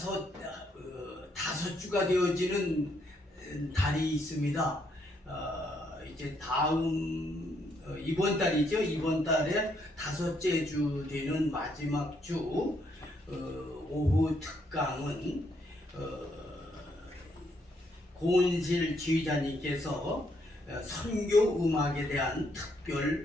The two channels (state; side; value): normal; both; correlation 0.73